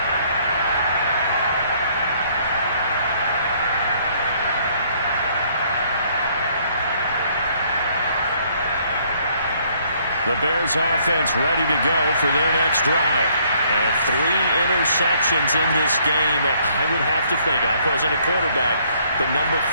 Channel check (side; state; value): both; inverted; correlation -0.65